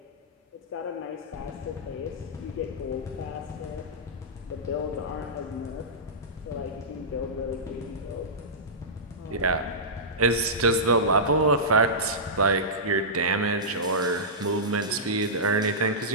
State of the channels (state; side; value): normal; both; correlation -0.15